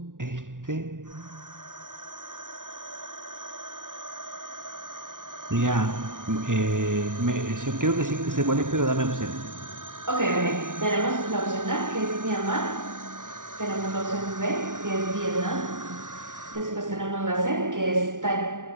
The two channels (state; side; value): late; left; 0.88 ms